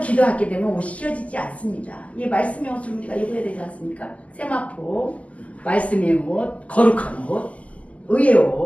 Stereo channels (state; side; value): late; right; 0.069 ms